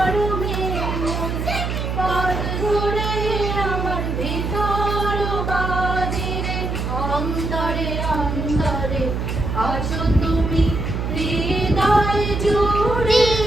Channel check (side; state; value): right; noise; hum, 2 dB below the sound